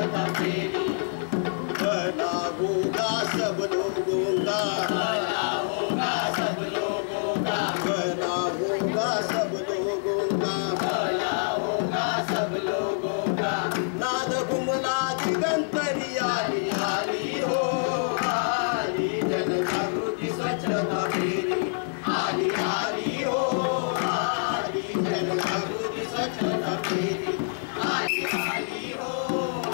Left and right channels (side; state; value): right; silent; digital silence